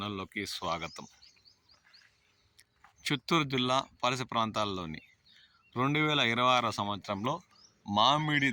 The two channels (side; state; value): both; identical; correlation 1.00